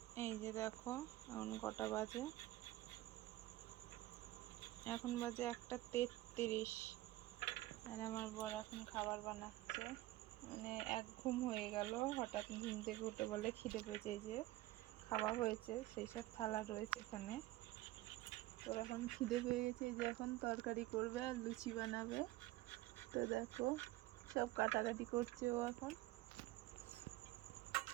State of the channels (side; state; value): left; quieter; 17.1 dB